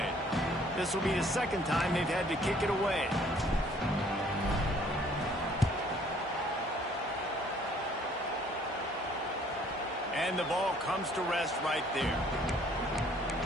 This will be the 2nd time they've had to kick it away. And the ball comes to rest right there.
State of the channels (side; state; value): both; normal; correlation 0.59